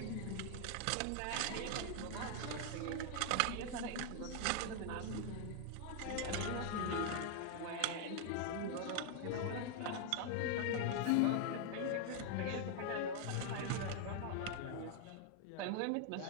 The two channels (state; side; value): different; both; correlation 0.00